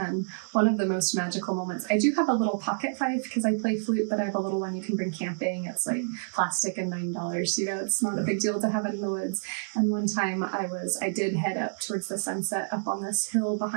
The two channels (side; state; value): left; silent; 59 dB below the other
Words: one of the most magical moments, I do have a little pocket fife because I play flute, but I have a little one you can bring camping. It's like plastic and $9, it's not a big deal to have it in the woods. And one time I did head up towards the sunset up on this hill